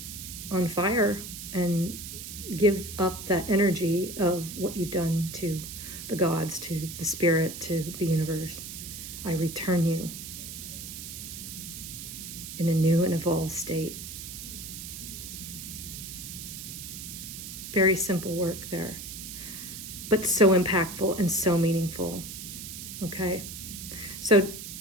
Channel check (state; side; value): noise; right; hiss, 9 dB below the sound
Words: on fire and give up that energy of what you've done to the gods, to the spirit, to the universe. I return you in a new and evolved state. Very simple work there, but so impactful and so meaningful. Okay? So